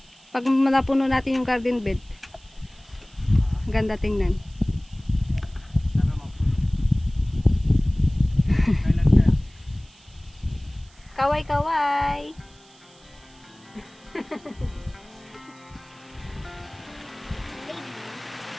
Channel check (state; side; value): noise; right; hiss, 28 dB below the sound